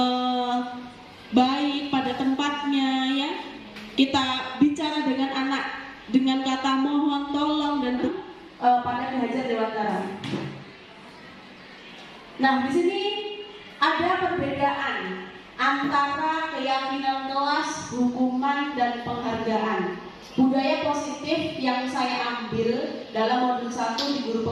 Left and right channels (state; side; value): identical; both; correlation 1.00